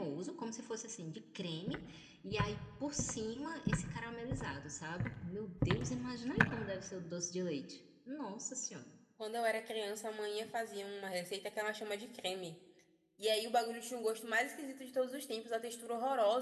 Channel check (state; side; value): identical; both; correlation 1.00